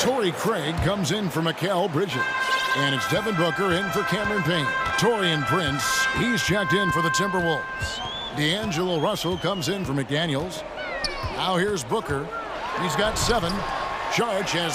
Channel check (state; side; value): identical; both; correlation 1.00